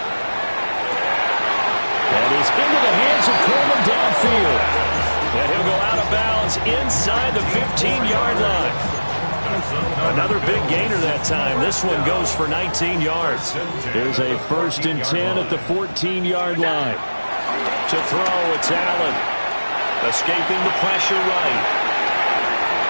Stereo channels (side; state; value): both; inverted; correlation -1.00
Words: That is into the hands of Coleman downfield. And he'll go out of bounds inside the 15-yard line. Another big gainer that time. This one goes for 19 yards. Here's a 1st and 10 at the 14-yard line. To throw, it's Allen. Escaping the pressure right.